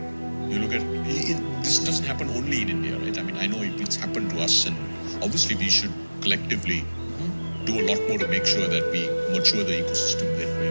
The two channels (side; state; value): both; inverted; correlation -1.00